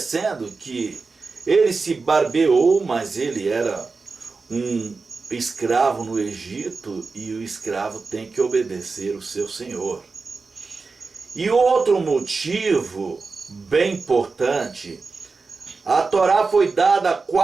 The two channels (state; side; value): quieter; left; 4.3 dB